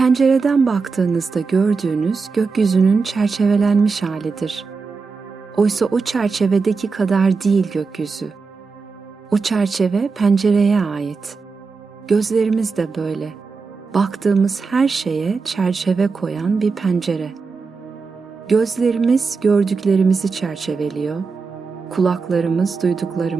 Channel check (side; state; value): left; quieter; 4.7 dB